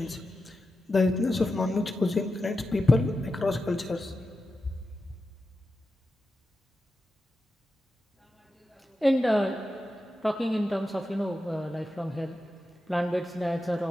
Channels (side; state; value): both; normal; correlation 0.91